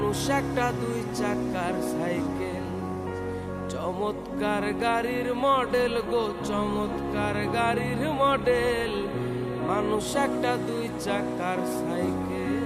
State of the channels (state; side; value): identical; both; correlation 1.00